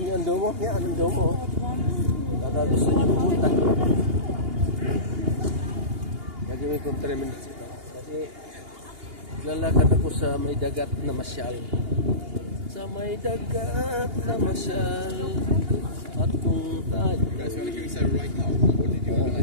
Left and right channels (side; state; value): left; late; 2.8 ms